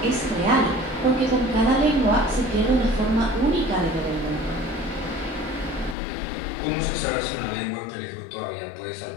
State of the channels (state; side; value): drops out; right; at 6.0 s